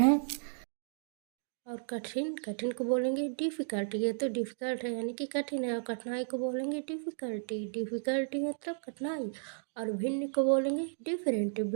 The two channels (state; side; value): silent; left; digital silence